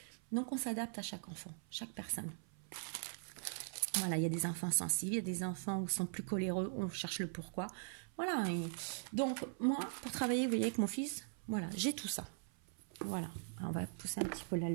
Donc, on s'adapte à chaque enfant, chaque personne. Voilà, il y a des enfants sensibles, il y a des enfants où sont plus coléreux, on cherche le pourquoi. Voilà. Et donc, moi, pour travailler, vous voyez, avec mon fils, voilà, j'ai tout ça. Voilà. Alors, on va pousser un petit peu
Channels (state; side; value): silent; left; 50 dB below the other